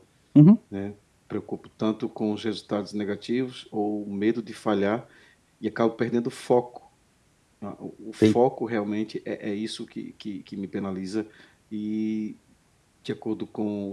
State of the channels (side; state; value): both; identical; correlation 1.00